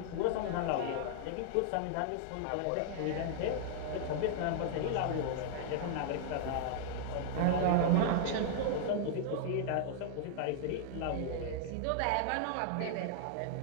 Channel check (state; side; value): different; both; correlation -0.01